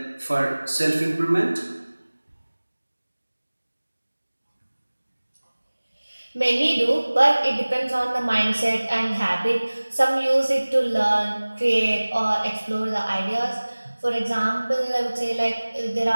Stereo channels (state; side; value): inverted; both; correlation -1.00